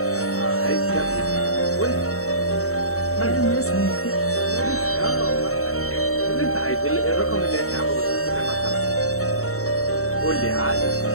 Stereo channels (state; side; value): late; right; 0.64 ms